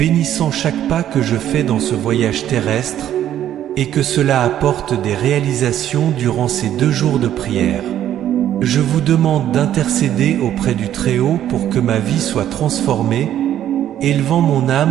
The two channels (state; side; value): quieter; left; 11.3 dB